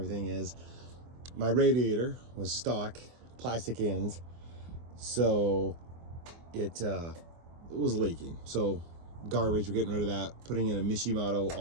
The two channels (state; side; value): late; left; 24 ms